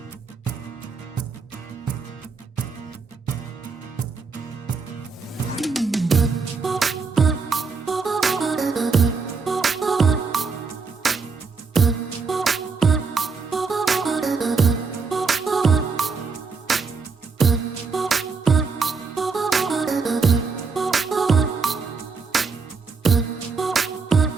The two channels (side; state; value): left; quieter; 4.8 dB